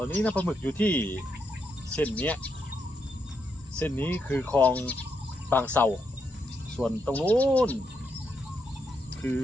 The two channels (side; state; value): both; normal; correlation 0.80